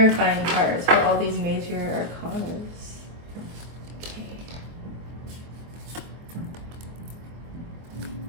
cards for all these major arcanas. Okay.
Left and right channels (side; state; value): left; late; 24 ms